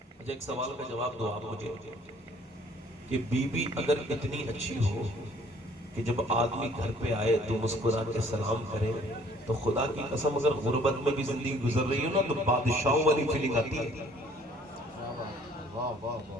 مجھے ایک سوال کا جواب دو آپ مجھے، کہ بیوی اگر اتنی اچھی ہو کہ جب آدمی گھر پہ آئے تو مسکرا کے سلام کرے، تو خدا کی قسم اگر غربت میں بھی زندگی گزر رہی ہو نا تو بادشاہوں والی فیلنگ آتی ہے. واہ واہ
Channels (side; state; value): both; normal; correlation 0.58